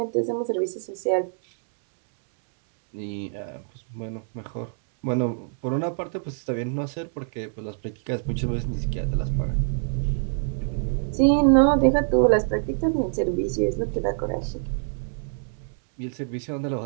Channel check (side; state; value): left; silent; 61 dB below the other